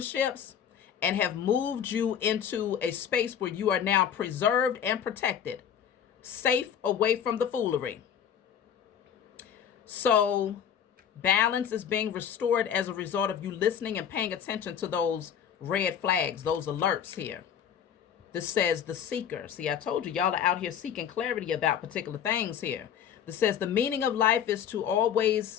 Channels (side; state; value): right; quieter; 8.7 dB